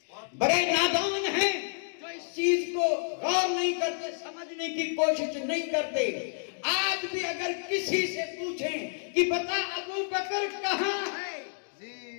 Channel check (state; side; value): silent; right; digital silence